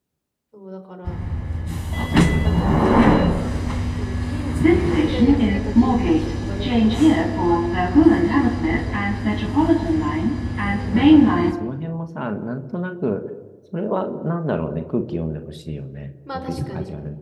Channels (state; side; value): identical; both; correlation 1.00